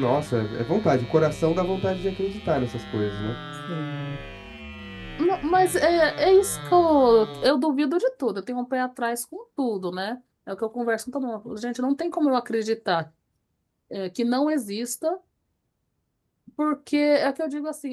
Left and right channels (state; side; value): identical; both; correlation 1.00